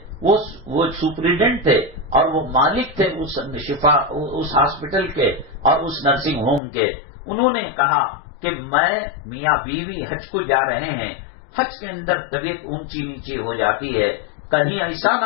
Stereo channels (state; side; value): drops out; right; at 6.6 s